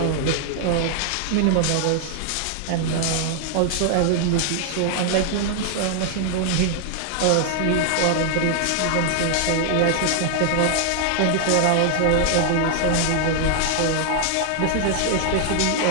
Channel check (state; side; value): different; both; correlation 0.00